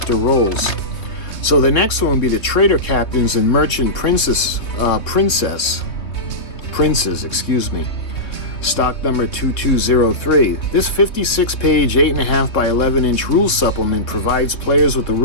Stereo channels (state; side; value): late; right; 3.2 ms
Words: roles. So the next one would be the trader captains and merchant princes, stock number 2203. This 56-page, 8.5 by 11-inch rule supplement provides players with the